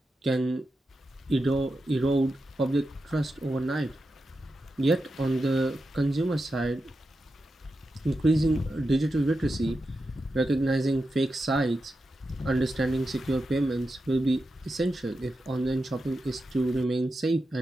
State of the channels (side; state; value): both; normal; correlation 0.89